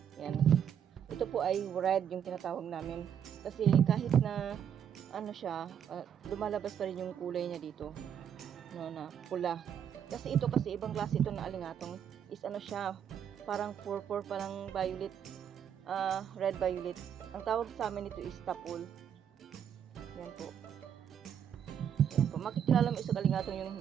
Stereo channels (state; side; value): quieter; left; 8.7 dB